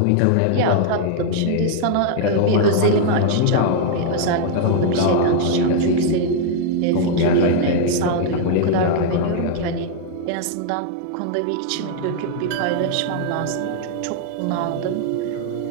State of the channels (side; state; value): both; different; correlation -0.01